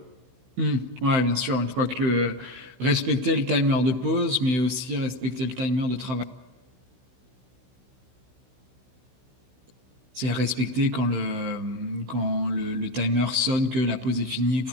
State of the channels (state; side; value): late; left; 16 ms